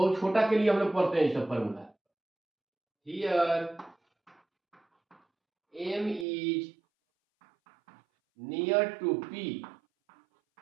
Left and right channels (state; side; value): drops out; left; at 6.2 s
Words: छोटा के लिए हम लोग पढ़ते हैं ये सब formula. Here M is near to P,